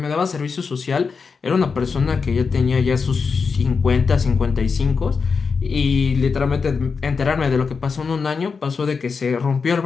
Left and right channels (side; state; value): right; quieter; 5.2 dB